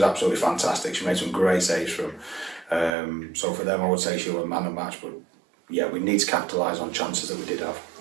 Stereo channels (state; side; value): drops out; left; at 2.9 s